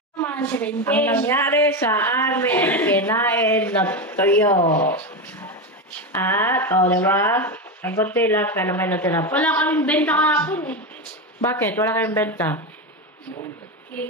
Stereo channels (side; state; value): both; normal; correlation 0.15